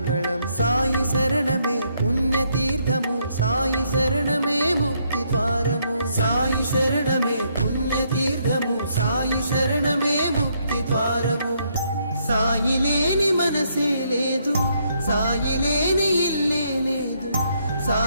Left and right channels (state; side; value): inverted; both; correlation -0.73